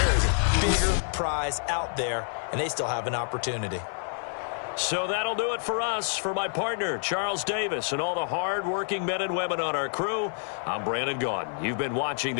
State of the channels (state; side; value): silent; right; 59 dB below the other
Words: is a bigger prize out there, and they still have an opportunity. So that'll do it for us. For my partner, Charles Davis, and all the hard-working men and women on our crew, I'm Brandon Gaudin. You've been watching